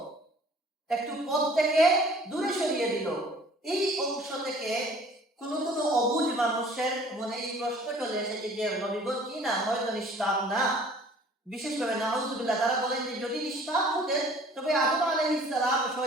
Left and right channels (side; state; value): both; normal; correlation 0.51